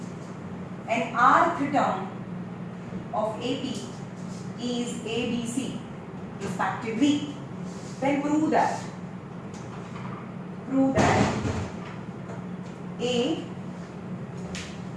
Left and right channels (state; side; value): identical; both; correlation 1.00